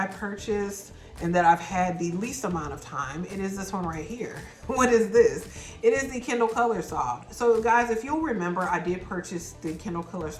purchased and that I've had the least amount of time, it is this one right here. What is this? It is the Kindle Colorsoft. So guys, if you'll remember, I did purchase the Kindle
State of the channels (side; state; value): both; identical; correlation 1.00